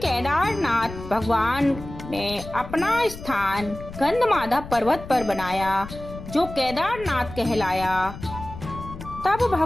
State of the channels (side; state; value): left; noise; rumble, 12 dB below the sound